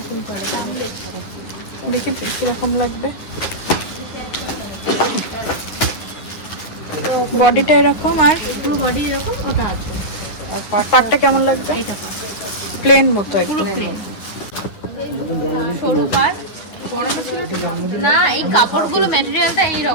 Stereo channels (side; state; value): right; late; 10 ms